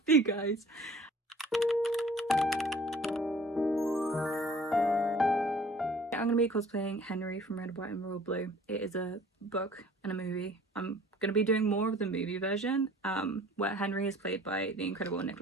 you guys. I'm going to be cosplaying Henry from Red, White and Royal Blue. It is a book and a movie. I'm going to be doing more of the movie version, where Henry is played by the incredible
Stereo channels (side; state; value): both; normal; correlation 0.51